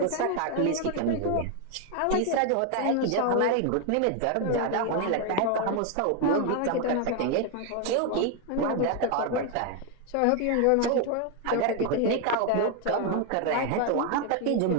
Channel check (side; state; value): both; different; correlation 0.01